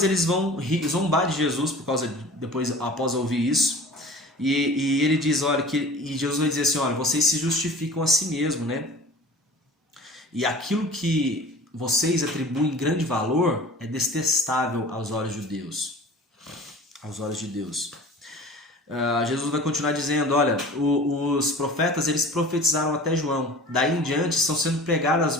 eles vão zombar de Jesus após ouvir isso, e ele diz, olha, e Jesus vai dizer assim, olha, vocês se justificam a si mesmo, né? E aquilo que vocês atribuem grande valor é detestável aos olhos de Deus. Aos olhos de Deus. Jesus vai continuar dizendo, olha, os profetas eles profetizaram até João. Daí em diante estão sendo pregadas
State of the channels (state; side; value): normal; both; correlation 0.41